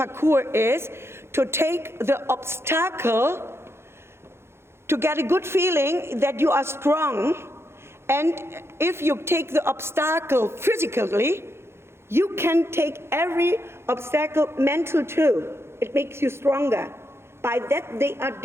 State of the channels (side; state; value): left; late; 0.12 ms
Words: is to take the obstacle to get a good feeling that you are strong. And if you take the obstacle physically, you can take every obstacle mental too. It makes you stronger. By that they are